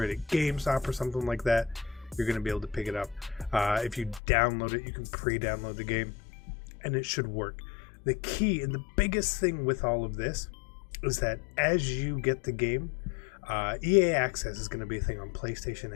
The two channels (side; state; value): right; drops out; at 4.2 s